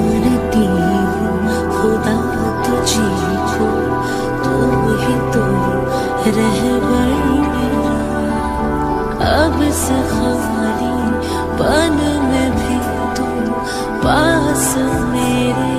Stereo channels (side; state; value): both; identical; correlation 1.00